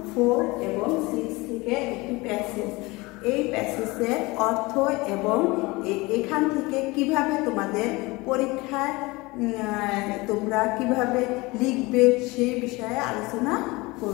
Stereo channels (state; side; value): quieter; right; 23.1 dB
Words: 4 এবং 6 থেকে একটি প্যাসেজ। এই প্যাসেজের অর্থ এবং এখান থেকে কিভাবে তোমাদের পরীক্ষায় তোমরা কিভাবে লিখবে সেই বিষয়ে আলোচনা